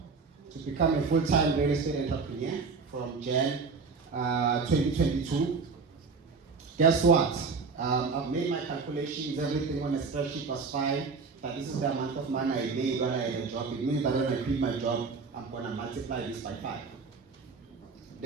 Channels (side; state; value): left; quieter; 4.7 dB